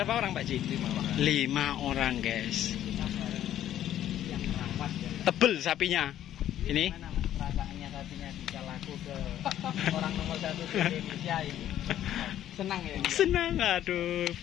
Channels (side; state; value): right; quieter; 11.7 dB